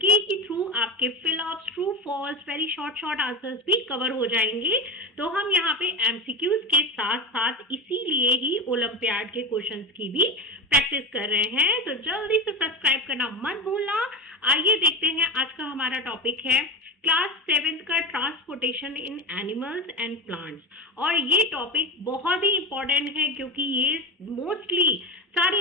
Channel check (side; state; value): both; normal; correlation 0.24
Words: के थ्रू आपके fill ups, true false, very short answers भी कवर हो जाएंगे। तो हम यहाँ पे एमसीक्यूज के साथ साथ इसीलिए ही ओलंपियाड के क्वेश्चंस की भी प्रैक्टिस कर रहे हैं। तो जल्दी से सब्सक्राइब करना मत भूलना। आइए देखते हैं, आज का हमारा टॉपिक है क्लास 7 का transportation in animals and plants. और ये टॉपिक बहुत ही इंपॉर्टेंट है क्योंकि ये मोस्टली